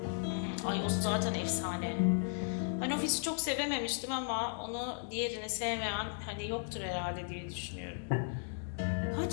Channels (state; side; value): silent; right; digital silence